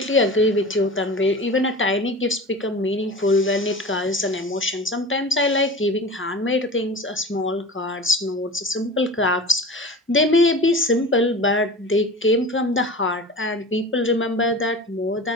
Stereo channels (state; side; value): normal; both; correlation 0.34